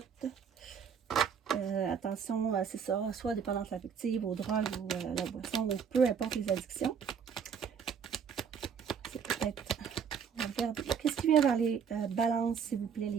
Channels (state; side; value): quieter; left; 6.9 dB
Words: Attention, c'est ça, soit dépendance affective, aux drogues ou la boisson, ou peu importe les addictions. C'est peut-être... On va regarder. Qu'est-ce qui vient vers les balances, s'il vous plaît,